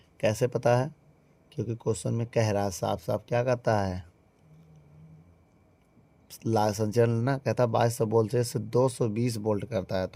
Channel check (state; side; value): identical; both; correlation 1.00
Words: कैसे पता है, क्योंकि क्वेश्चन में कह रहा है साफ साफ, क्या कहता है, संचालन ना, कहता है 2200 वोल्ट से 220 वोल्ट करता है।